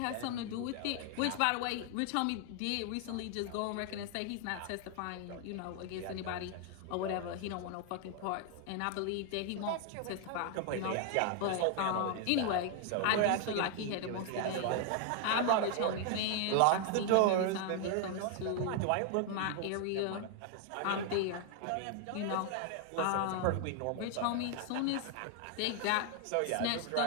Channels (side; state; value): both; different; correlation 0.00